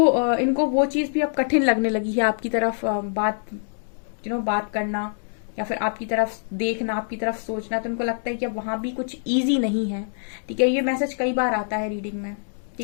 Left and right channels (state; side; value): silent; right; digital silence